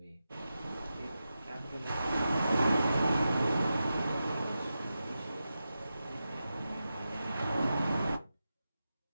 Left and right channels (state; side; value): inverted; both; correlation -0.91